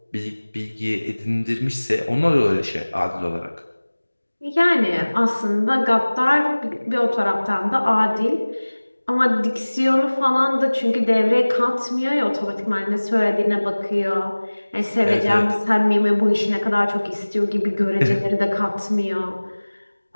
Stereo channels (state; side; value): inverted; both; correlation -1.00